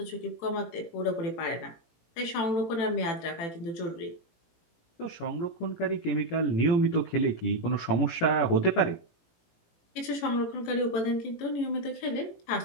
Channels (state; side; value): late; right; 18 ms